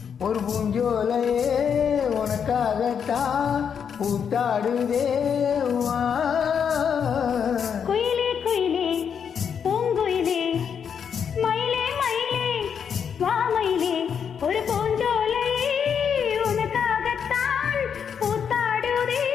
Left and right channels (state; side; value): quieter; right; 7.3 dB